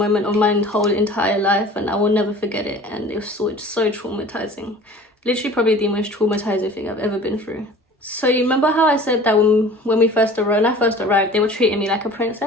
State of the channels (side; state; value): both; normal; correlation 0.44